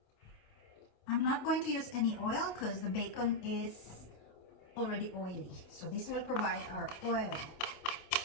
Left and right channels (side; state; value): right; late; 28 ms